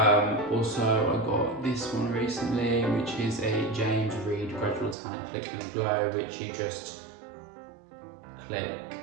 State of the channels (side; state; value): left; drops out; at 5.0 s